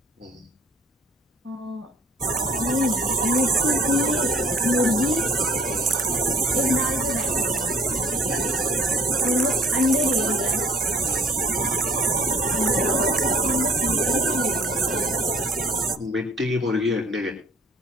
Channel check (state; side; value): normal; both; correlation 0.55